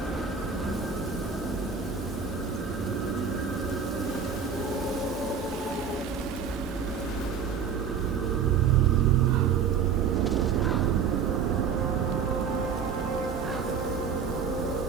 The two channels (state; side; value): quieter; left; 6.6 dB